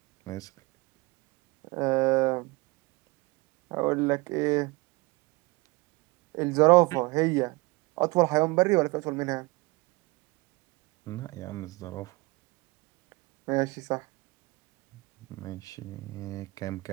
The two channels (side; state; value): left; quieter; 24.2 dB